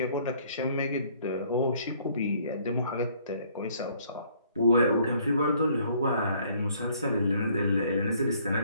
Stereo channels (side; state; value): both; inverted; correlation -0.62